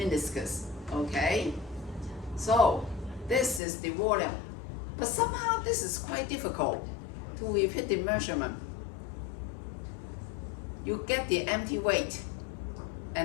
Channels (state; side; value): drops out; right; at 3.6 s